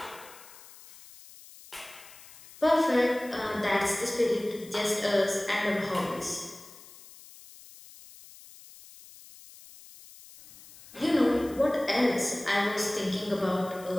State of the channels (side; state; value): left; noise; hiss, 20 dB below the sound